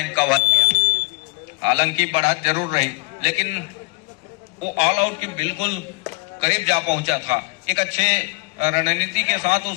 कवर किया। हालांकि बढ़त जरूर रही, लेकिन वो ऑल आउट के बिल्कुल करीब जा पहुंचा था। एक अच्छे रणनीति के साथ उस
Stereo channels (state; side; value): quieter; right; 29.0 dB